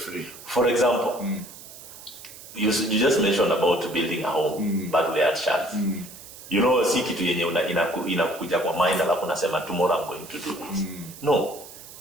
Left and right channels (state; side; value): noise; right; hiss, 16 dB below the sound